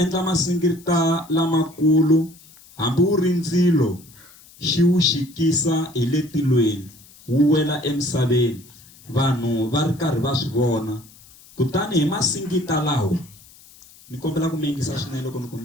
masingita lamakulu, hambi wu ri ndzilo xi wu xikisa hi le tilweni wu wela emisaveni, vanhu va ri karhi va swi vona. Kutani hi masingita lawo, ni kombela ku mi yingisa swinene loko ni ku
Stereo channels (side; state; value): left; noise; hiss, 24 dB below the sound